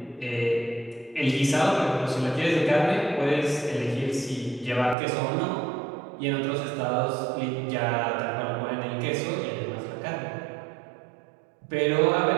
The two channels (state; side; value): drops out; left; at 5.0 s